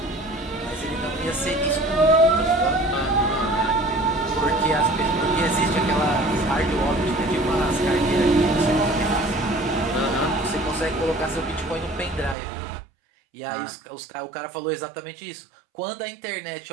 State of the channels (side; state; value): left; drops out; at 12.4 s